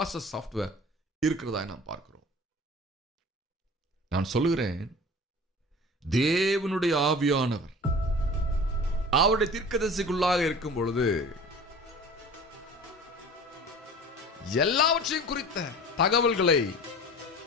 சாஃப்ட்வேர் இருக்கிறதா நாம் பார்க்கிறோம். நான் சொல்லுகிறேன், தேவனுடைய ஆவியானவர் அவருடைய தீர்க்கதரிசிக்குள்ளாக இருக்கும் பொழுது எல்லாவற்றையும் குறித்த தகவல்களை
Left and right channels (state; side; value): normal; both; correlation 0.40